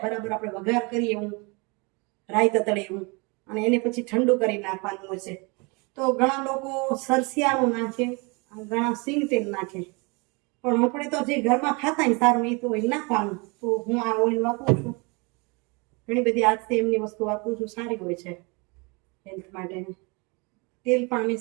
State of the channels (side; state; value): left; quieter; 29.6 dB